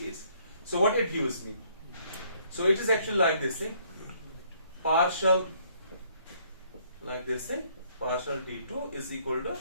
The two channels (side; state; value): both; inverted; correlation -0.65